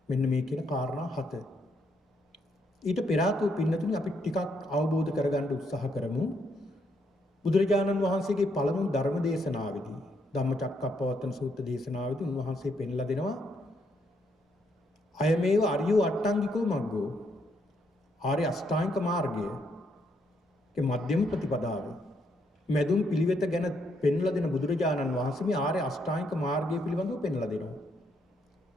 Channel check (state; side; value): normal; both; correlation 0.75